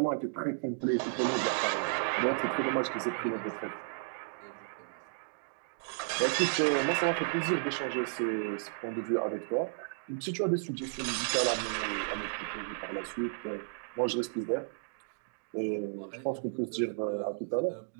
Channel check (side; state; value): left; silent; digital silence